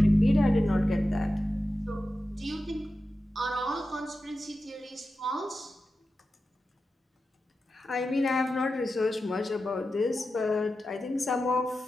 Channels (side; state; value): both; normal; correlation 0.92